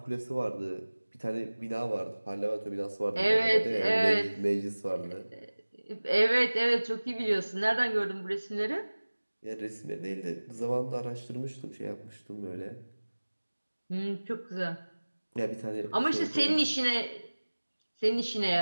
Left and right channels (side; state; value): both; inverted; correlation -1.00